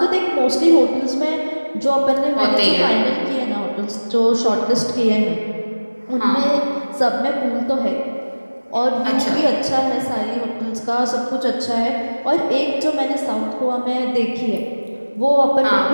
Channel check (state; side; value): inverted; both; correlation -1.00